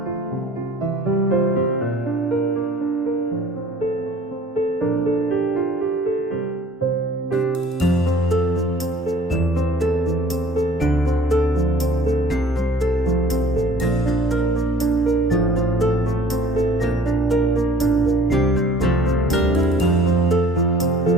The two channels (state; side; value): normal; both; correlation 0.50